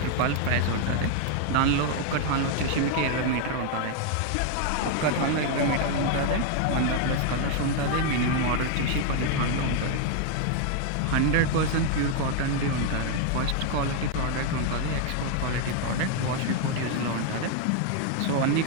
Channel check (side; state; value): both; different; correlation 0.00